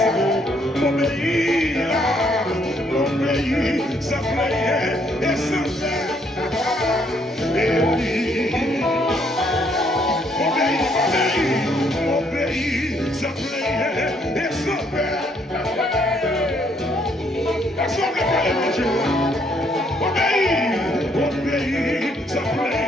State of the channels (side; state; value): both; normal; correlation 0.69